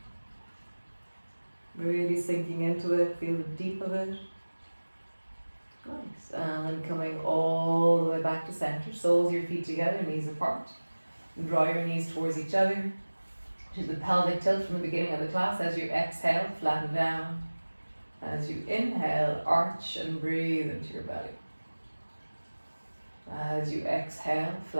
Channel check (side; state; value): both; inverted; correlation -1.00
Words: Really sinking into it. Feel the deep of it. Nice. And then coming all the way back to center. Soles of your feet together, knees apart. And draw your knees towards each other. Do the pelvic tilt from the beginning of the class. As you exhale, flatten down. As you inhale, arch and breathe into your belly. As you exhale,